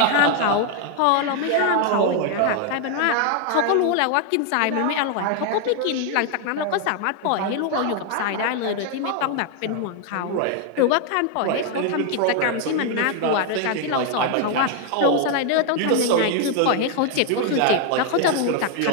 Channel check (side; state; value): both; different; correlation 0.00